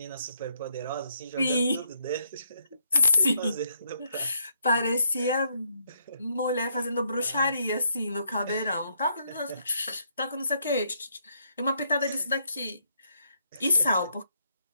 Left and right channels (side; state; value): both; inverted; correlation -0.74